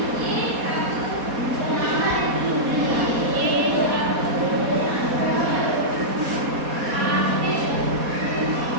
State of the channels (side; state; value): left; late; 4.2 ms